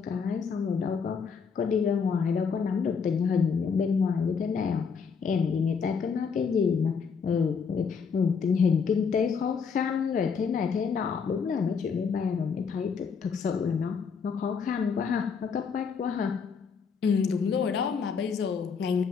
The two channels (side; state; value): right; quieter; 5.9 dB